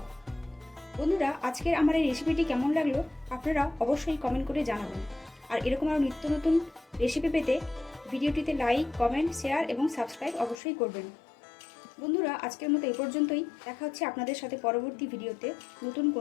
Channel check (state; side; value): drops out; right; at 10.6 s